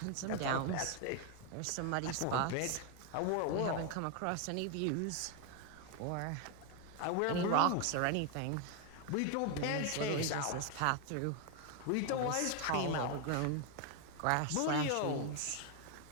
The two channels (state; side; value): different; both; correlation 0.01